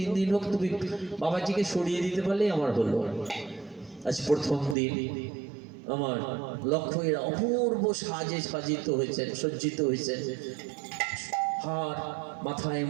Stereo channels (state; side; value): drops out; left; at 4.8 s